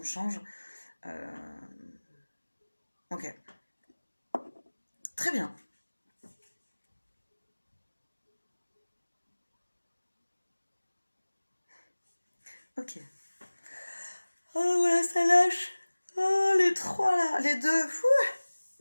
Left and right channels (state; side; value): inverted; both; correlation -1.00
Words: change. Ok. Très bien. Ok. Oh, voilà, ça lâche. Oh, les trois là. Les deux.